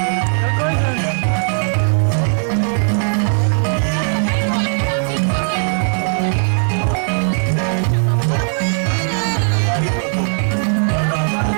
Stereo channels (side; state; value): left; silent; 58 dB below the other